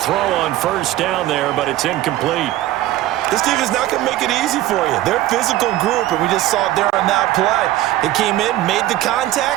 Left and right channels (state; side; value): quieter; left; 14.9 dB